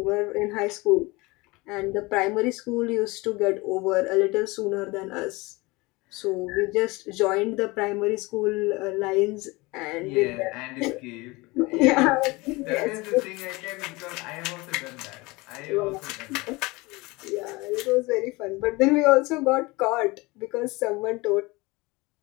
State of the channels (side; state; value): right; quieter; 23.6 dB